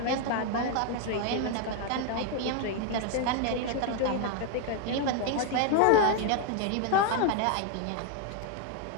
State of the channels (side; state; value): both; different; correlation 0.01